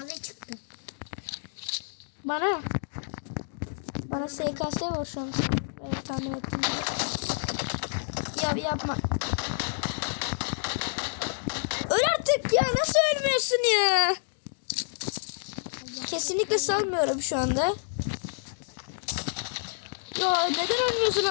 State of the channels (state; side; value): silent; right; digital silence